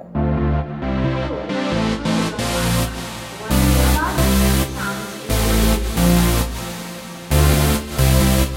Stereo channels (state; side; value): identical; both; correlation 1.00